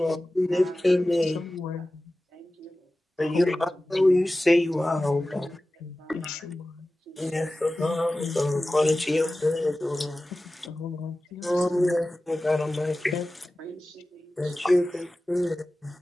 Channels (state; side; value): normal; both; correlation 0.96